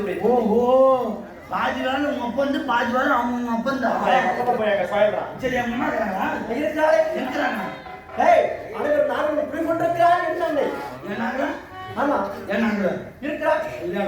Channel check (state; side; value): identical; both; correlation 1.00